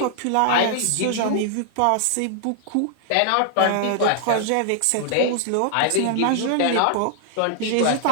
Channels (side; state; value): both; different; correlation -0.01